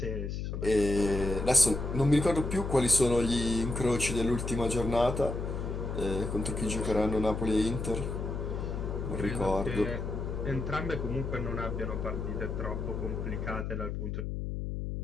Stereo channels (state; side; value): noise; left; hum, 4 dB below the sound